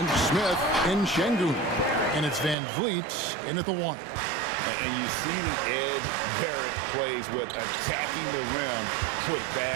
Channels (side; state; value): left; drops out; at 2.6 s